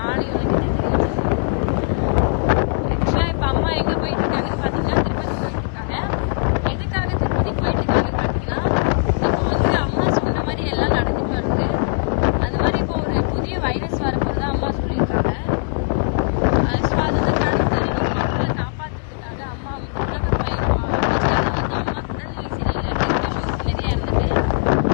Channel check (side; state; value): right; silent; digital silence